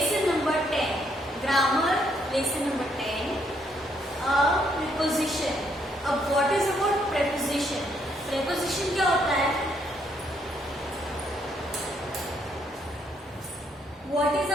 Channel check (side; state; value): both; normal; correlation 0.72